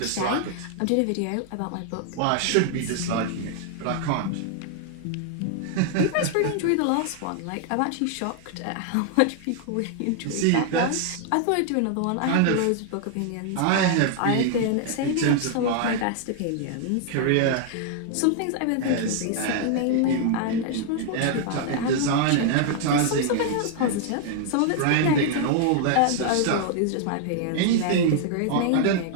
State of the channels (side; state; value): both; different; correlation 0.00